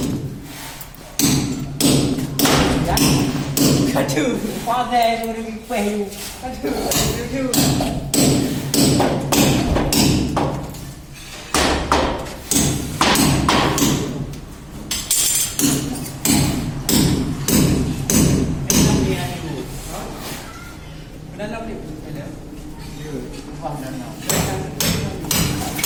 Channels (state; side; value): identical; both; correlation 1.00